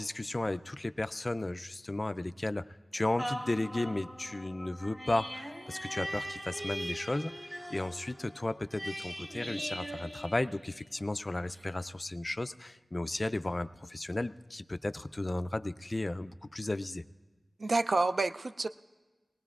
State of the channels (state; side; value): normal; both; correlation 0.97